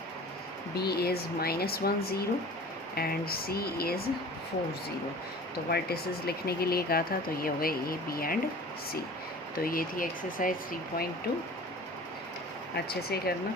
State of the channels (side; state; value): both; normal; correlation 0.42